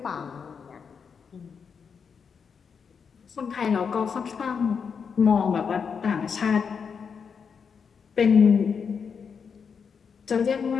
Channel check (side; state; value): right; quieter; 6.3 dB